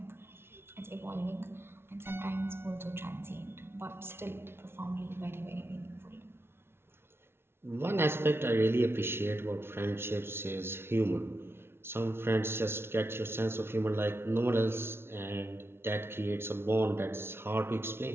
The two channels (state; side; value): late; left; 0.12 ms